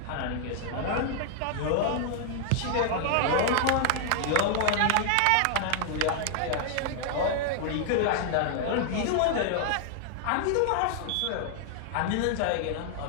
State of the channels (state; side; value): different; both; correlation 0.00